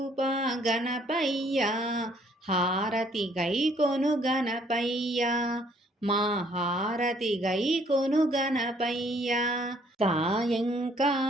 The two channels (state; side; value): normal; both; correlation 0.63